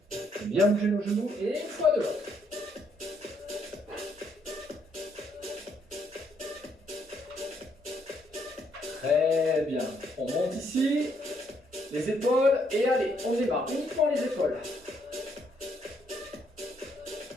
Bien bouger nos genoux. Et une fois de l'autre. Très bien. On monte ici. Les épaules. Et allez, on démarre. Uniquement les épaules.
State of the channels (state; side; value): normal; both; correlation 0.72